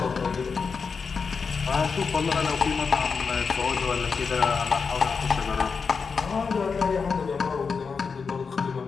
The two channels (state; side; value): quieter; right; 5.3 dB